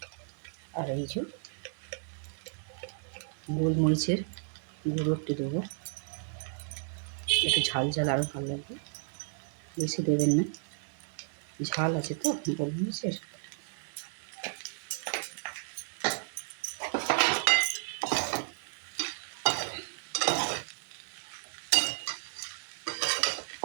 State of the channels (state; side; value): silent; left; digital silence